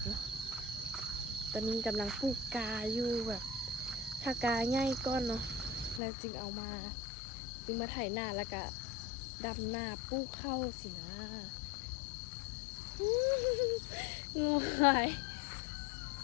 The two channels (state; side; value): drops out; right; at 6.0 s